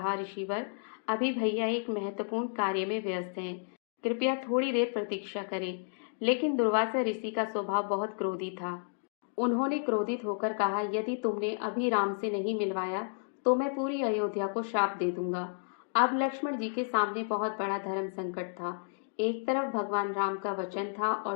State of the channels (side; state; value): right; silent; digital silence